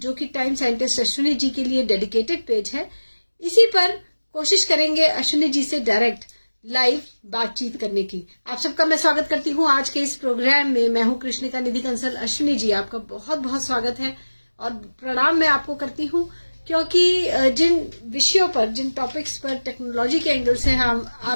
जो कि टाइम साइंटिस्ट अश्विनी जी के लिए डेडिकेटेड पेज है, इसी पर कोशिश करेंगे अश्विनी जी से डायरेक्ट लाइव बातचीत करने की। आप सबका मैं स्वागत करती हूँ आज के इस प्रोग्राम में। मैं हूँ कृष्णिका निधि कंसल। अश्विनी जी, आपका बहुत बहुत स्वागत है और प्रणाम मैं आपको करती हूँ, क्योंकि जिन विषयों पर, जिन टॉपिक्स पर टेक्नोलॉजी के एंगल से हम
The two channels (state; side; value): inverted; both; correlation -1.00